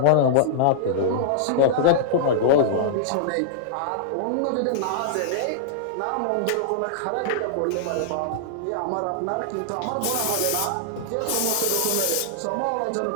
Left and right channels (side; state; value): both; different; correlation -0.01